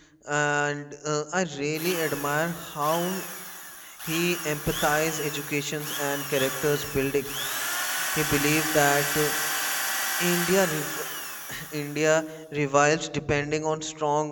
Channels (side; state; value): both; identical; correlation 1.00